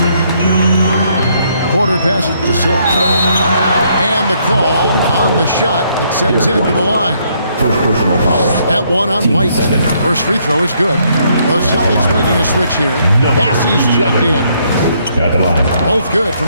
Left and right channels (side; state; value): both; inverted; correlation -0.70